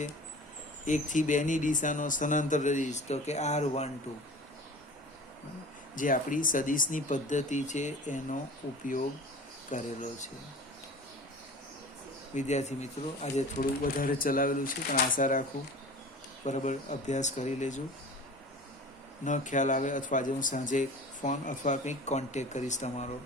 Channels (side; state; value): both; normal; correlation 0.40